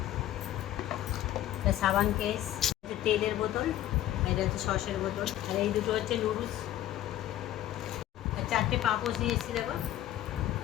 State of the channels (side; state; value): right; quieter; 13.1 dB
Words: একটা সাবান কেস, তেলের বোতল, এটা হচ্ছে সসের বোতল, আর এই দুটো হচ্ছে নুডলস, আর 4টে পাপোশ নিয়ে এসেছি। দেখো,